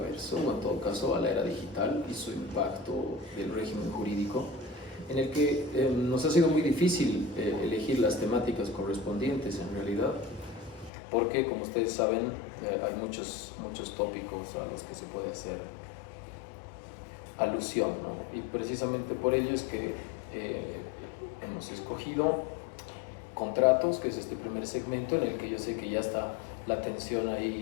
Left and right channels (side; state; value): right; drops out; at 10.9 s